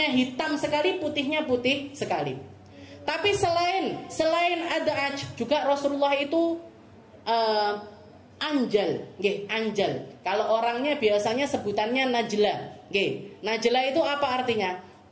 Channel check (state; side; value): identical; both; correlation 1.00